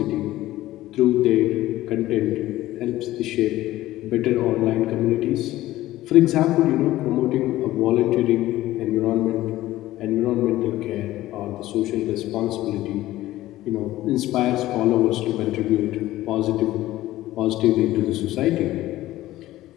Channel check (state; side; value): quieter; right; 15.7 dB